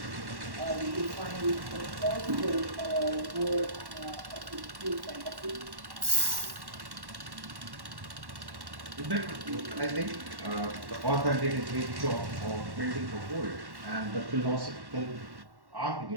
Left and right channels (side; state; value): left; late; 1.1 ms